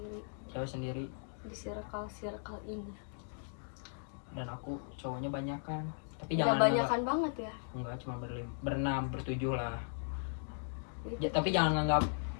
Cewek sendiri. Di circle ini. Dan aku cowoknya banyak kan. Tapi Nggak jangan banyakan banget ya. Enggak, cuma berenam, bertujuh lah. Ya, tapi jangan nganggap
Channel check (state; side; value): silent; right; digital silence